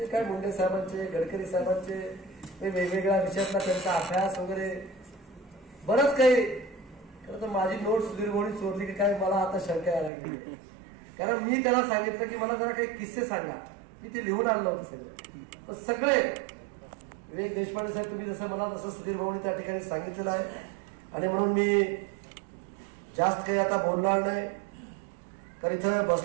काय मुंडे साहेबांचे गडकरी साहेबांचे वेगवेगळ्या विषयातला त्यांचा अभ्यास वगैरे बरंच काही. खरं तर माझी नोट सुधीर भाऊनी चोरली की काय मला आता शंका यायला लागली. कारण मी त्याला सांगितलं की मला जरा काही किस्से सांगा. मी ते लिहून आणलं होतं सगळं. सगळे विवेक देशपांडे साहेब तुम्ही जसं मला तसं सुधीर भाऊनी त्या ठिकाणी सांगितलेलं आहे आणि म्हणून मी जास्त काही आता बोलणार नाही. तर इथं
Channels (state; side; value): drops out; left; at 10.1 s